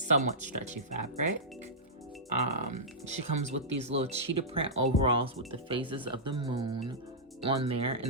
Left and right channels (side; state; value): both; normal; correlation -0.14